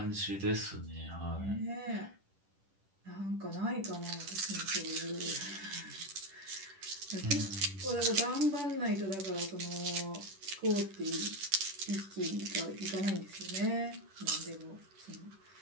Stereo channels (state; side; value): late; left; 10 ms